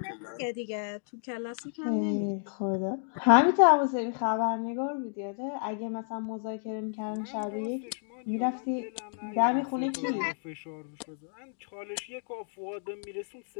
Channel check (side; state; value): right; silent; digital silence